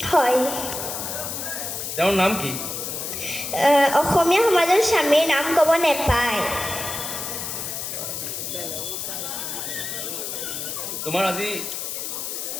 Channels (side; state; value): left; noise; hiss, 5 dB below the sound